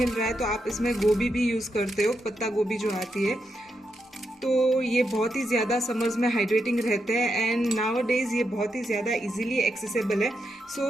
रहा है तो आप इसमें गोभी भी यूज़ करते हो, पत्ता गोभी जो आती है। तो ये बहुत ही ज़्यादा समर्स में हाइड्रेटिंग रहते हैं, एंड नाउ डेज ये बहुत ही ज़्यादा इजीली एक्सेसिबल है। सो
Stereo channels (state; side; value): normal; both; correlation 0.83